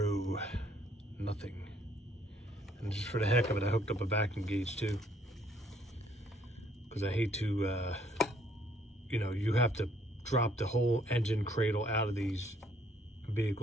nothing. And just for the heck of it, I hooked up a vacuum gauge too. Because I hate to, you have to drop the whole engine cradle out of these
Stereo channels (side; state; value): both; normal; correlation 0.65